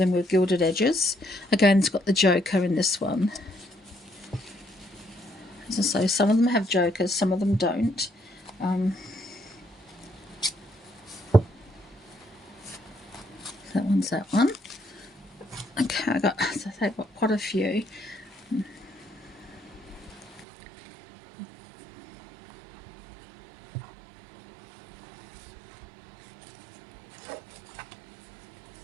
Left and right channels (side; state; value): left; drops out; at 20.5 s